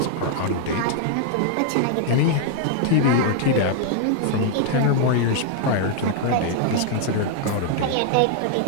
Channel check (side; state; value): both; different; correlation -0.01